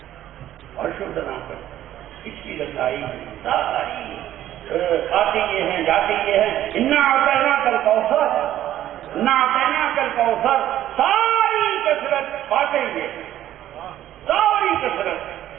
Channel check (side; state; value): left; quieter; 12.5 dB